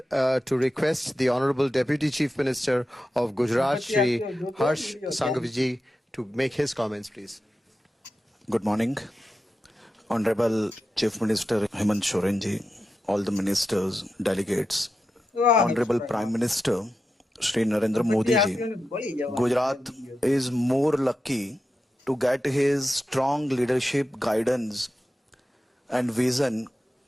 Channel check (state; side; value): normal; both; correlation 0.90